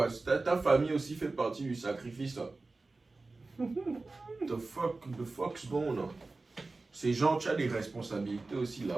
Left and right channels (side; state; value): left; quieter; 3.5 dB